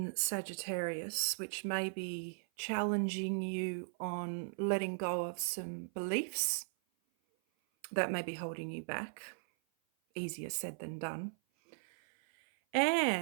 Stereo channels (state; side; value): silent; left; 53 dB below the other